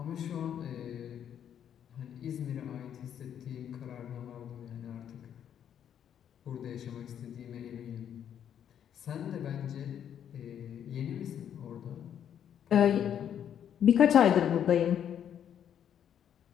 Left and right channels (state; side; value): quieter; right; 9.3 dB